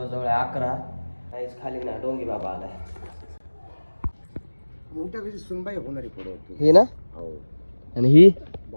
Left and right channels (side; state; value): both; inverted; correlation -1.00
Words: 11. काहीच खाली ना डोंगी बाबा आलाय. मोठ्या कशी सुनबाई होणारी पुढे होती ही ना, हो. आणि ही